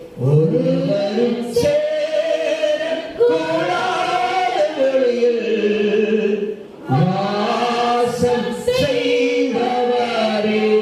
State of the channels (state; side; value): identical; both; correlation 1.00